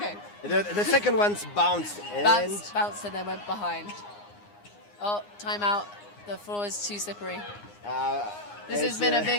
The second one's bounced. And Bounced and then went behind. Oh, timeout. The floor is too slippery. This has been a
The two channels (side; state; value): right; late; 9.7 ms